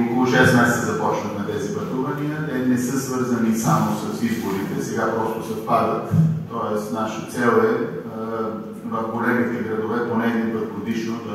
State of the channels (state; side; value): identical; both; correlation 1.00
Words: 6 месеца започнахме тези пътувания. Те не са свързани само с изборите, сега просто съвпадат. Тоест, наша цел е в големите градове поне един път годишно